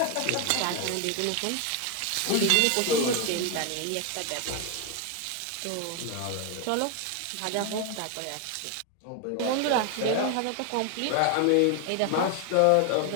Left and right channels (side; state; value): both; different; correlation 0.01